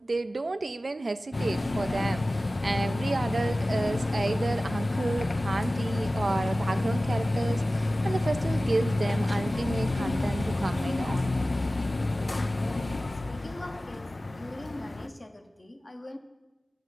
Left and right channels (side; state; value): both; normal; correlation 0.96